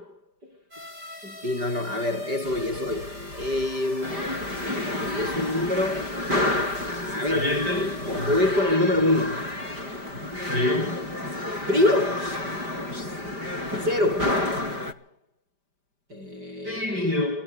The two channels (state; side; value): late; left; 5.0 ms